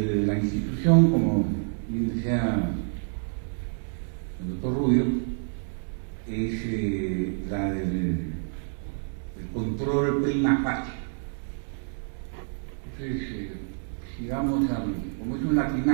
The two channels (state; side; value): silent; left; digital silence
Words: La institución, como bien decía el doctor Rubio, es la del control prima facie. Entonces, si vamos como es un